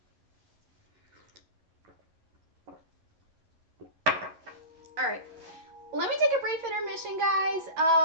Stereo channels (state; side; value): late; left; 11 ms